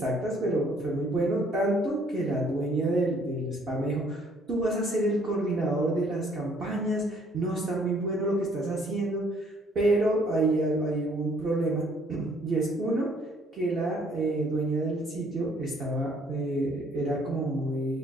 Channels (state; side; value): normal; both; correlation 0.63